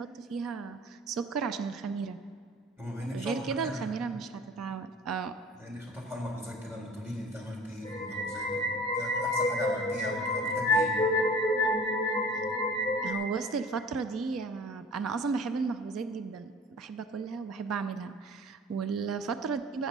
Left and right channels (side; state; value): both; normal; correlation 0.44